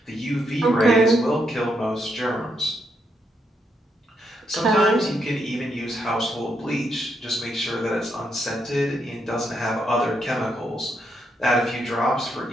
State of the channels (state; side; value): normal; both; correlation 0.78